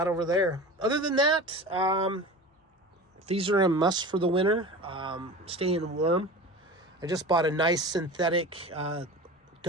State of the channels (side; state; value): both; normal; correlation 0.33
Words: over there. Other than that, these are a must for the winter. Staying warm. I just bought a nice synthetic